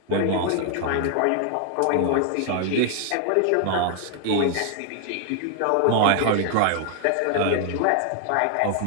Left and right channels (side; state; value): both; different; correlation 0.00